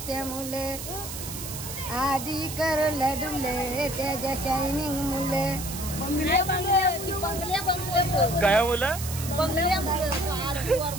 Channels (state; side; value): noise; right; hiss, 8 dB below the sound